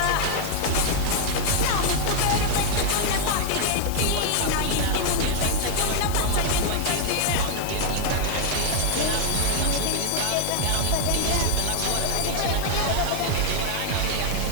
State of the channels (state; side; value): different; both; correlation 0.00